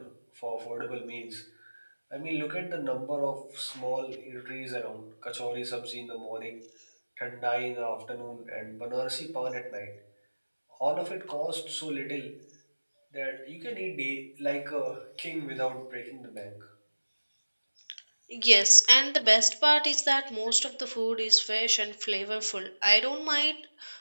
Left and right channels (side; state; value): both; inverted; correlation -1.00